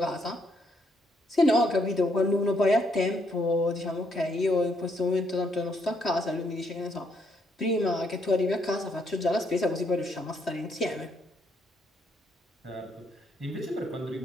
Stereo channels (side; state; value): both; normal; correlation 0.73